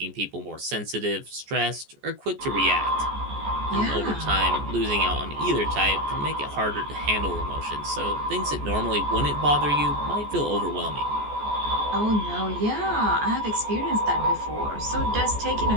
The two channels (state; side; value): late; left; 14 ms